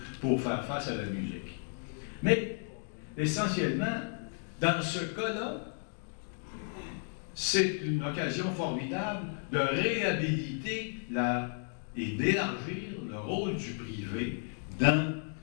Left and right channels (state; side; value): silent; right; 55 dB below the other